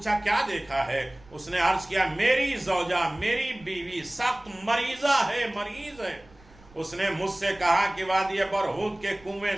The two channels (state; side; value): noise; right; rumble, 25 dB below the sound